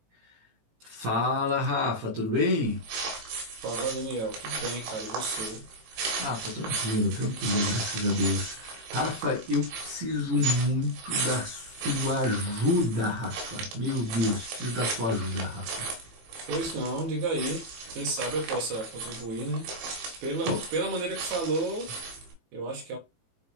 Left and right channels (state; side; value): late; left; 18 ms